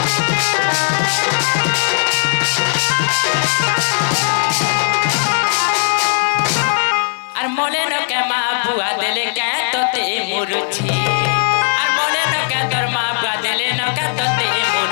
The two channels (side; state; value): right; silent; 68 dB below the other